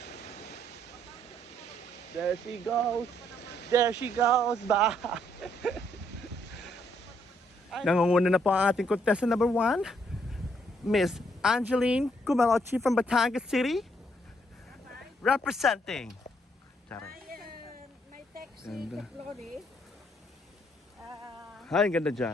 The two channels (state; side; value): normal; both; correlation 0.71